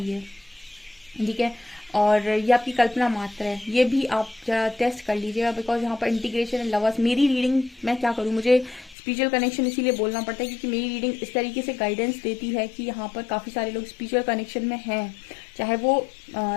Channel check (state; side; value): drops out; right; at 9.0 s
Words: ये, ठीक है। और ये आपकी कल्पना मात्र है, ये भी आप जरा टेस्ट कर लीजिएगा। बिकॉज यहाँ पर इंटीग्रेशन एंड लवर्स, मेरी रीडिंग, मैं क्या करूँ, मुझे स्पिरिचुअल कनेक्शन इसीलिए बोलना पड़ता है क्योंकि मेरी रीडिंग इस तरीके से गाइडेंस देती है कि यहाँ पर काफ़ी सारे लोग स्पिरिचुअल कनेक्शन में हैं, चाहे वो